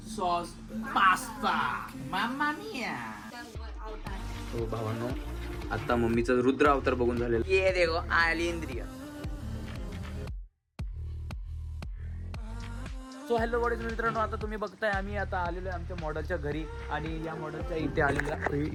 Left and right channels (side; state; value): both; identical; correlation 1.00